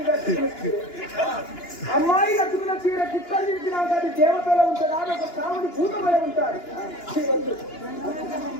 అమ్మాయి కట్టుకున్న చీర కుక్కలు తిరిగినాక అది దేవతలో ఉంటుందా? ఒక కావుని భూతమై ఉంటారు.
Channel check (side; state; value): right; late; 2.9 ms